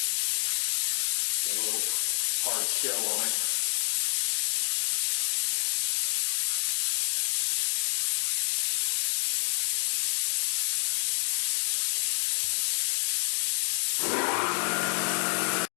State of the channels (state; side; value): silent; right; 59 dB below the other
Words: Got a little hard shell on it.